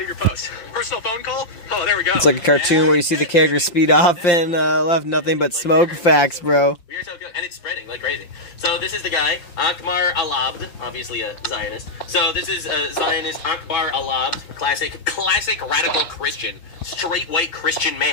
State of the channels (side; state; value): right; late; 5.8 ms